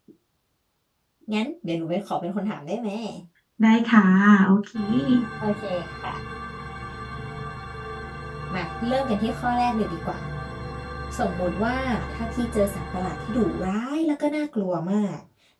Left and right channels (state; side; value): identical; both; correlation 1.00